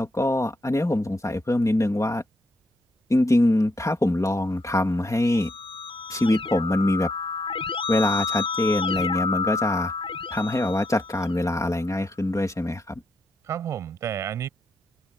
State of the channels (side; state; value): both; normal; correlation 0.78